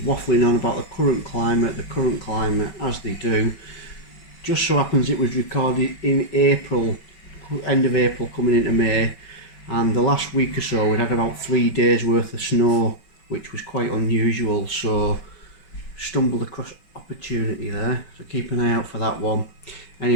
on about the current climate, as they do. Just so happens it was recorded in April, end of April coming into May, and the last week or so we'd had about 3 days worth of snow, which was quite unusual, so stumbled across opportunity there, so keep an eye out for that one.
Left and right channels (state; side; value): late; right; 5.3 ms